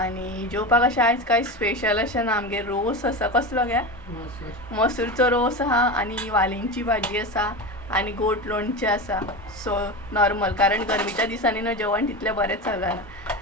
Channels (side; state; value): both; normal; correlation 0.23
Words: जेवपाक अशें आयज कांय स्पेशल अशें ना. आमगे रोस आसा. कसलो गे? मसूरचो रोस आहा आनी वालींची भाजी आसा आनी गोट लोणचें आसा. सो नॉर्मल, कारण गरमेच्या दिसांनी न्हू जेवण तितलें बरेंच